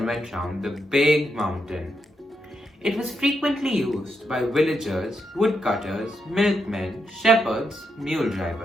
went round the big mountain. It was frequently used by villagers, woodcutters, milkmen, shepherds, mule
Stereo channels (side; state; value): both; normal; correlation 0.82